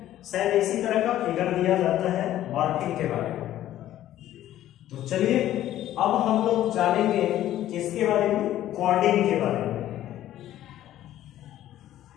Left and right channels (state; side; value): quieter; right; 13.0 dB